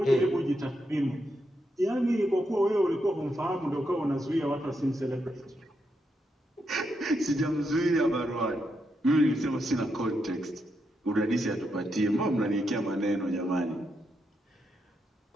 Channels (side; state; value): both; normal; correlation 0.82